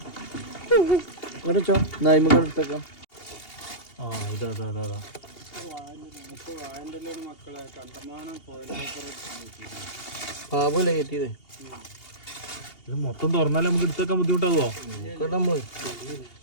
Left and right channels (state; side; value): late; right; 2.8 ms